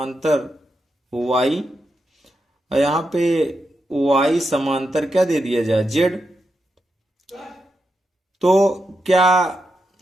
वाई, और यहाँ पे वाई समांतर क्या दे दिया जाए, जेड, तो क्या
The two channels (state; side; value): normal; both; correlation 0.86